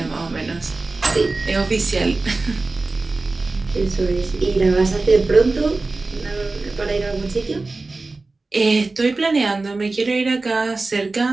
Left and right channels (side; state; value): left; quieter; 3.5 dB